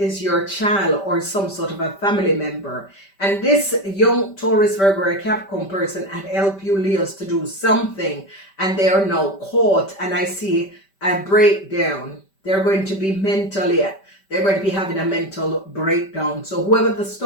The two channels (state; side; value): late; right; 5.1 ms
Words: your child or some sort of a family member. And this young Taurus, Virgo, or Capricorn person had helped you Leos to do something, and they are now caught. And I see a breakdown. They're going to be they're going to be having a mental breakdown. So whoever the